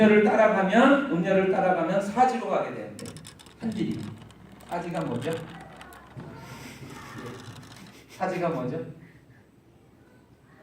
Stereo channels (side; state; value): both; identical; correlation 1.00